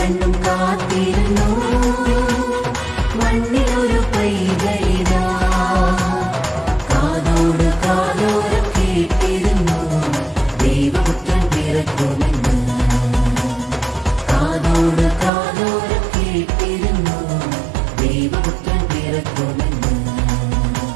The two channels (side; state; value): left; drops out; at 15.3 s